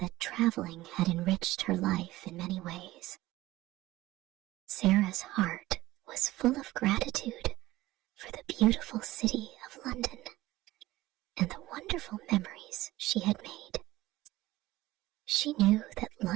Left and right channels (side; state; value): left; quieter; 17.3 dB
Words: traveling had enriched her life in many ways. Sarah's heart was full of gratitude for the beautiful city of London and the wonderful memories she had made. She knew that